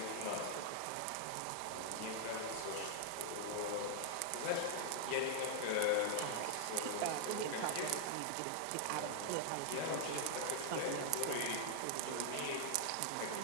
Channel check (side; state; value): both; different; correlation -0.01